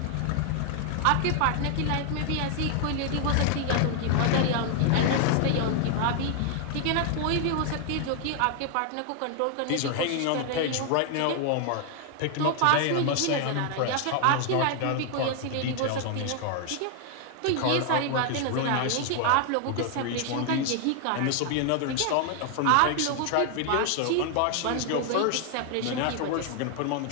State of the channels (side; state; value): both; different; correlation 0.00